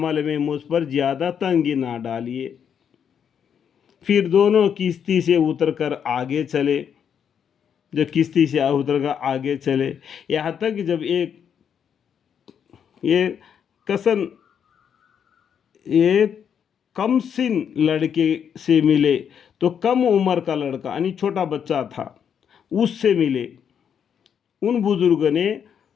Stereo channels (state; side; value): quieter; right; 8.0 dB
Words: میں مجھ پر زیادہ تنگی نہ ڈالیے۔ پھر دونوں کشتی سے اتر کر آگے چلے، جب کشتی سے اتر کر آگے چلے، یہاں تک کہ جب یہ کم سن لڑکے سے ملے تو کم عمر کا لڑکا یعنی چھوٹا بچہ تھا، اس سے ملے، ان بزرگوں نے